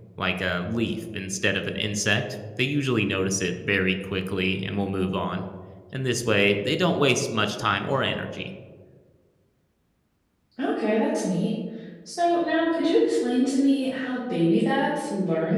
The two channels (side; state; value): both; identical; correlation 1.00